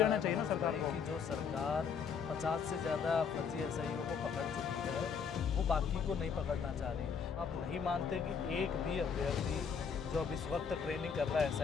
देना है चाहिए ना मनोज सरकार भाई को। कि जो सरकार 50 से ज़्यादा फर्जी एसआईओ को पकड़ चुकी है, वो बाकी को नहीं पकड़ना चाह रही? आप नहीं मानते कि एक भी अभ्यर्थी जो अब इस वक्त ट्रेनिंग कर रहा है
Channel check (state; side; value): quieter; right; 6.4 dB